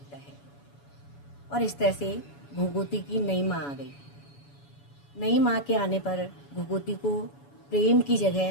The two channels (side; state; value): right; late; 7.1 ms